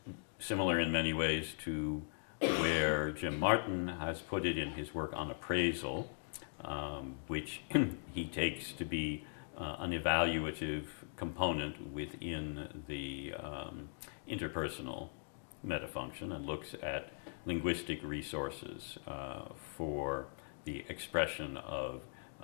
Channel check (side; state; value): right; silent; digital silence